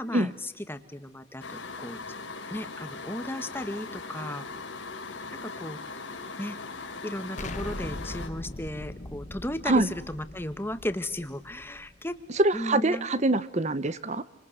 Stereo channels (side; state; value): both; normal; correlation 0.45